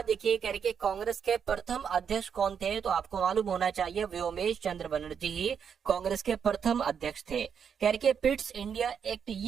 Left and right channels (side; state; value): left; quieter; 7.3 dB